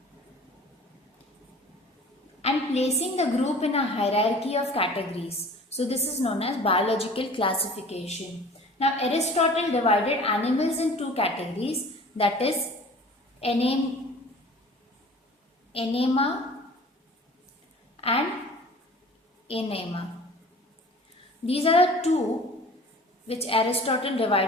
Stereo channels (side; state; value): both; normal; correlation 0.45